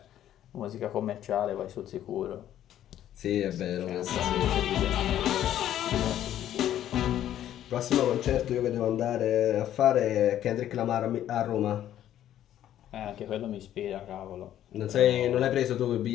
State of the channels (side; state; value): right; quieter; 11.6 dB